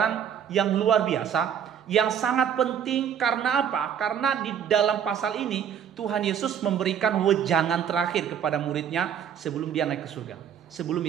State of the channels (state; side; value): quieter; left; 8.5 dB